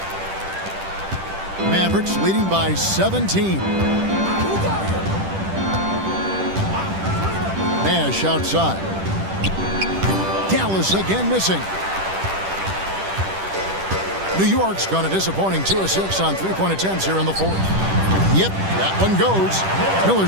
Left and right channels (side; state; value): left; late; 10 ms